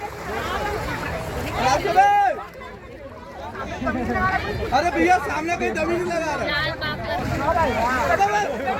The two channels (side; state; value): both; identical; correlation 1.00